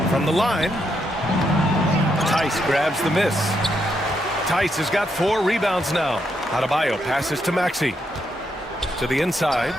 From the line. Tice grabs the miss. Tice has got 4 rebounds now. Adebayo passes to Maxey. To the inside.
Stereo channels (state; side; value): normal; both; correlation 0.79